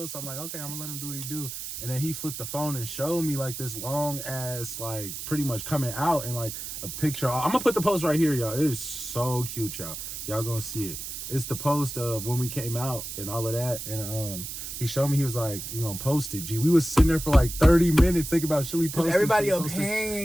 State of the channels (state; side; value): noise; right; hiss, 7 dB below the sound